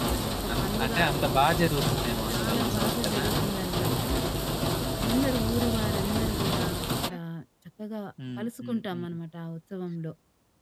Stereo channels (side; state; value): both; identical; correlation 1.00